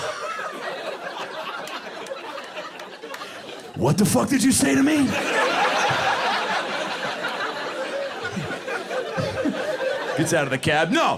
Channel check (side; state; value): both; identical; correlation 1.00